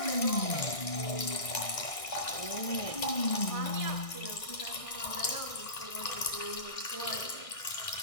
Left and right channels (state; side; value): late; right; 1.6 ms